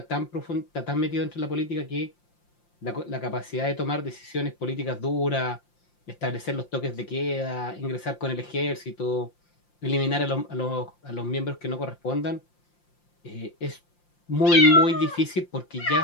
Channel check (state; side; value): late; right; 5.7 ms